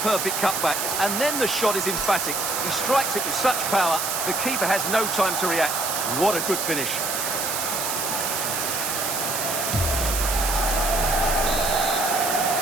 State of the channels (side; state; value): right; noise; hiss, 1 dB below the sound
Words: cutback, and then the shot is emphatic. He strikes it with such power, the keeper has no time to react. What a good finish.